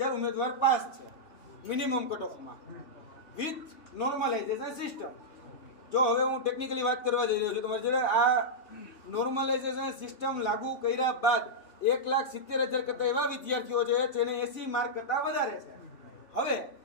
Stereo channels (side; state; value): right; late; 3.2 ms